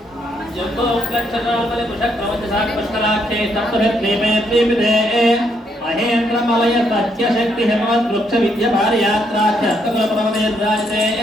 जम्बो उपलक्षणावले मुषक्रमञ्चसाक्षलाख्ये सप्तभिर्दीपे दीपिते महेन्द्रमलय सत्यशक्ति हेमवत् वृक्ष विद्य भार्यात्राख्य अस्तकुलप्रवदयद्राजते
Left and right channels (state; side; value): normal; both; correlation 0.74